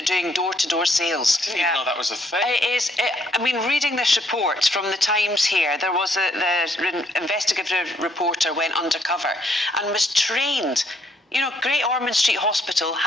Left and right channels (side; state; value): both; normal; correlation 0.70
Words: are doing door-to-door sales. I didn't even know that was a thing. It is. I mean, reading this report from the Times here, there was the investigative reporter went undercover and was trained. You know, Great Ormond Street Hospital